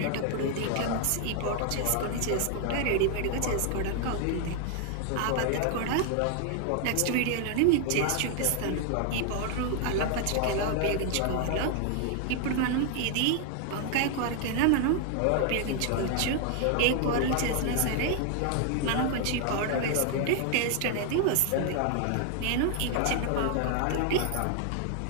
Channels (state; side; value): different; both; correlation 0.00